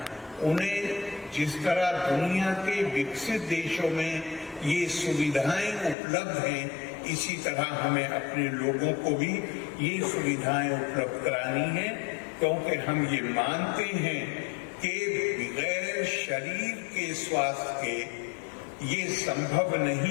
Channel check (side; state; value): right; drops out; at 6.0 s